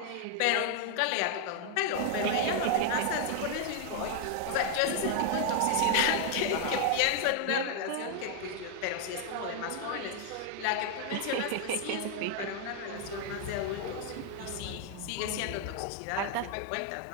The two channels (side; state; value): both; different; correlation 0.00